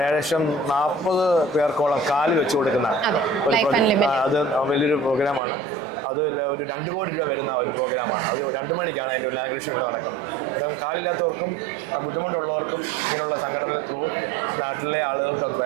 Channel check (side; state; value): left; drops out; at 5.4 s